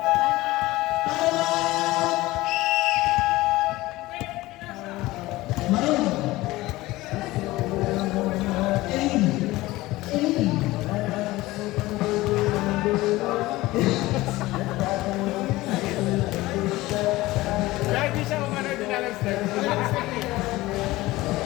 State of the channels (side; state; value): right; quieter; 18.7 dB